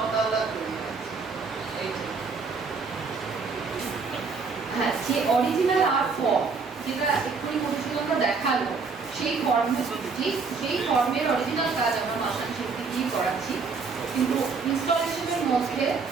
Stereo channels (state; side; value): quieter; left; 4.8 dB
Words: তৈরি আছে। হ্যাঁ, যে অরিজিনাল আর্ট ফর্ম যেটা এক্ষুনি মধুসূদনরা দেখালো, সেই ফর্মের অরিজিনাল কাজ আমরা মাসান শিল্পী দিয়ে করাচ্ছি। কিন্তু ইনস্টলেশনের মধ্যে